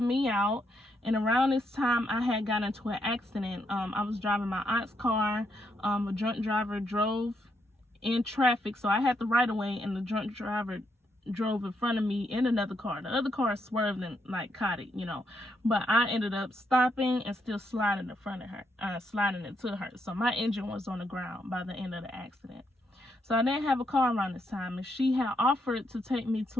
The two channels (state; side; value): normal; both; correlation 0.78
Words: me out. And around this time, I had gotten into an accident. I was driving my aunt's car. A drunk driver drove in traffic, so I had the right of way, and the drunk driver drove in front of me in another car. The other car swerved and like caught it, you know, but I ended up stopping and still sliding in front of her, sliding into her. So my engine was on the ground by the end of the accident. So I didn't have a car around this time, and she had offered to take me